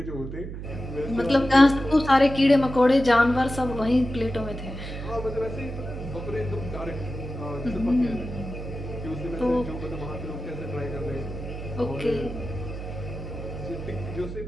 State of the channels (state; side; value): noise; right; hum, 8 dB below the sound